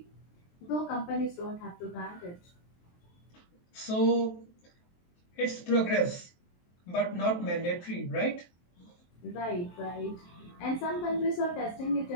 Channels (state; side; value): late; right; 23 ms